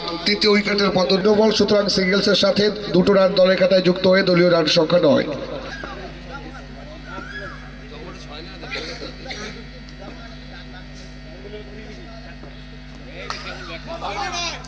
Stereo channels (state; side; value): identical; both; correlation 1.00